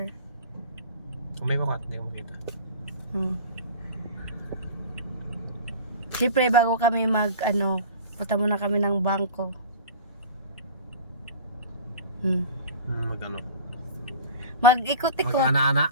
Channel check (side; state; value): both; inverted; correlation -0.37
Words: May bakat, hindi ko makita. Siyempre, bago kami punta muna kami ng bangko. Mag-ano? Mag-ikot-ikot. Mag-ana-ana.